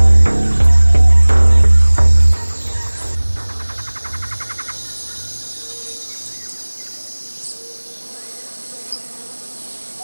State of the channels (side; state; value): both; inverted; correlation -1.00